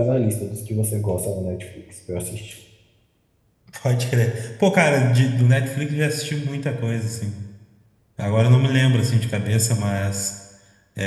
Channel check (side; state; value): both; identical; correlation 1.00